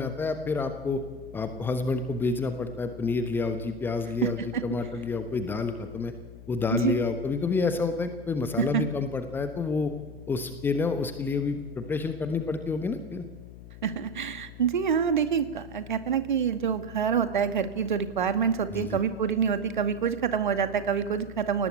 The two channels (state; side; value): noise; left; hum, 16 dB below the sound